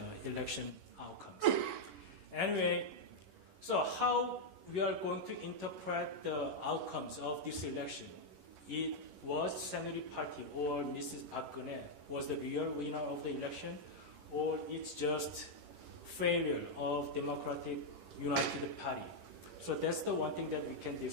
election outcomes. Anyway, so how we are going to interpret the outcomes of this election? It was Saenuri Party or Mrs. Park Geun-hye was the real winner of the election, or it's just failure of Democratic United Party? So that's the one thing that we can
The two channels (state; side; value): late; left; 11 ms